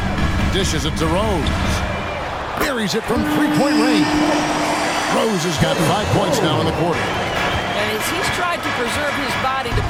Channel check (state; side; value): identical; both; correlation 1.00